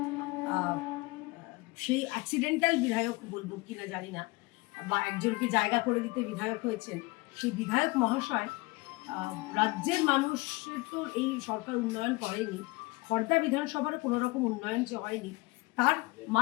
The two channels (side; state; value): right; quieter; 23.6 dB